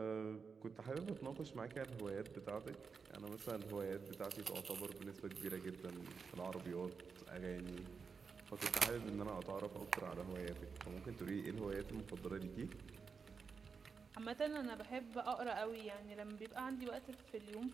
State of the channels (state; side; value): quieter; left; 5.4 dB